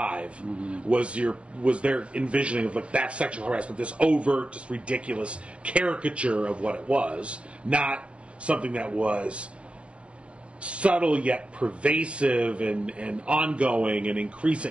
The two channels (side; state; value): left; late; 0.061 ms